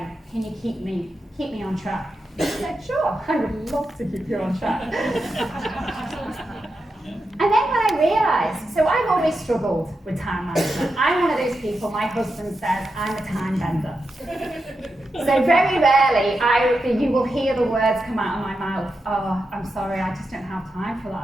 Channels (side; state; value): both; normal; correlation 0.88